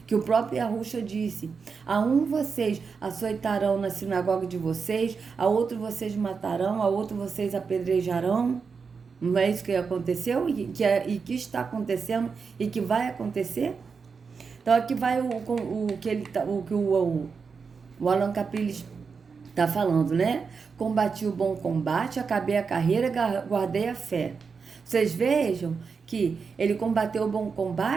Que o próprio Yahusha disse, a um vocês açoitarão na sinagoga de vocês, a outro vocês matarão, a outro vocês apedrejarão. Não é isso que aconteceu e que está acontecendo e que vai acontecer? Então aqui vai o que o Alan Capriles está falando, né? Combati o bom combate, acabei a carreira, guardei a fé. Vocês vejam que ele combateu o bom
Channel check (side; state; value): left; quieter; 5.4 dB